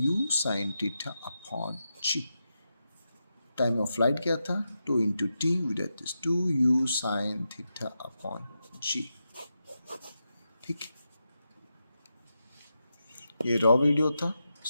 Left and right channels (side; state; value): both; inverted; correlation -0.88